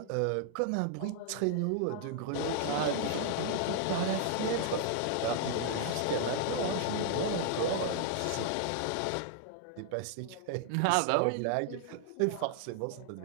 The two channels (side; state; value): both; different; correlation -0.01